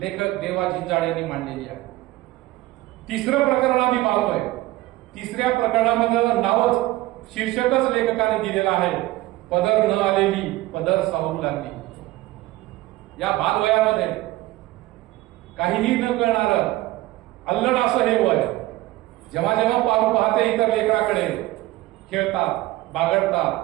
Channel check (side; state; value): left; quieter; 17.7 dB